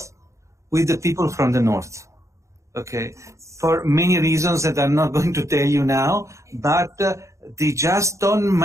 with the people from the North. Okay, for many reasons that I'm not going to tell you now, but they just don't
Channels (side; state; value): left; late; 0.15 ms